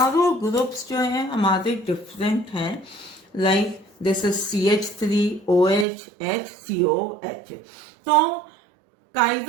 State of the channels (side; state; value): left; drops out; at 5.9 s